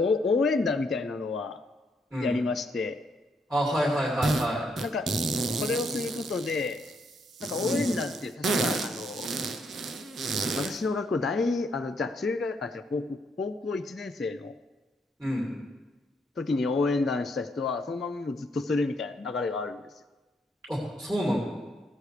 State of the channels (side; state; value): both; normal; correlation 0.74